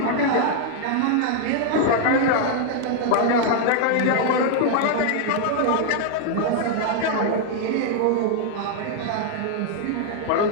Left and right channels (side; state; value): both; different; correlation 0.00